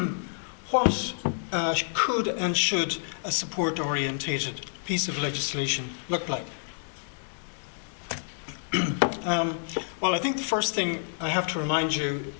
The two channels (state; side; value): silent; right; 59 dB below the other